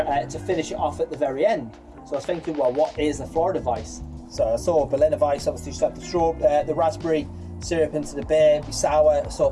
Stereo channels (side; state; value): both; identical; correlation 1.00